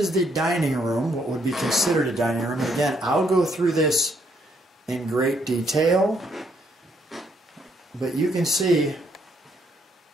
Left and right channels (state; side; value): normal; both; correlation 0.71